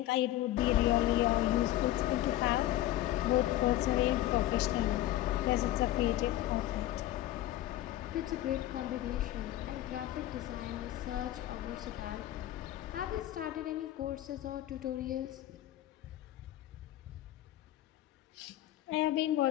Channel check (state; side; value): quieter; right; 14.3 dB